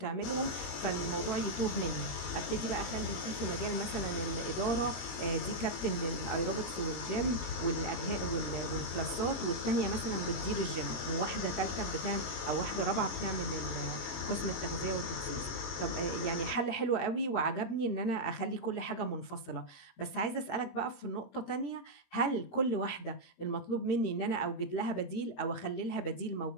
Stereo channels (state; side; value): late; right; 22 ms